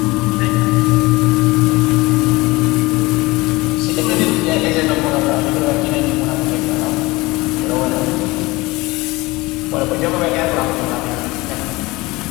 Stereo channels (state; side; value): quieter; right; 21.9 dB